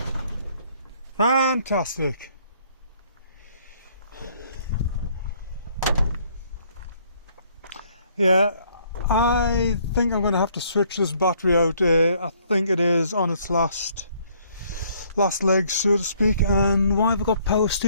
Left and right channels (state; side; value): inverted; both; correlation -0.64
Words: Fantastic. Yeah, I think I'm going to have to switch this battery out. I think it is on its last legs, so to speak. And why have I got power